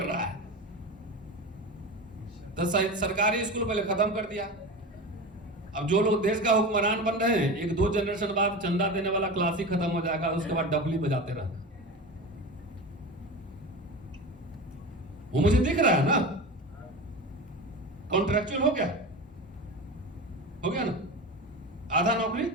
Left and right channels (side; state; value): both; normal; correlation 0.27